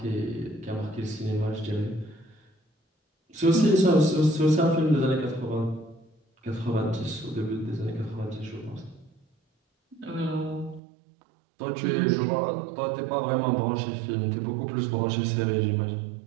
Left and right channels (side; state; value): left; drops out; at 10.8 s